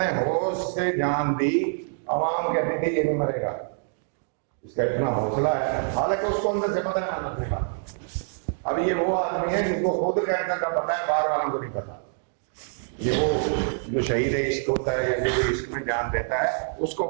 ہوش سے جان دی, عوام کہتی تھی یہ نہیں مرے گا, اس کا اتنا حوصلہ ہے. حالانکہ اس کو اندر سے پتا ہے مرنے والا. اب یہ وہ آدمی ہے جن کو خود کینسر کا پتا ہے, باہر والوں کو نہیں پتا. یہ وہ جو شہید عشق ہوتا ہے یا جو عشق میں جان دیتا ہے اس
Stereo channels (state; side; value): silent; left; digital silence